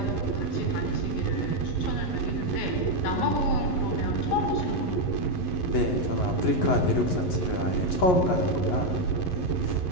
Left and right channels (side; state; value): right; late; 11 ms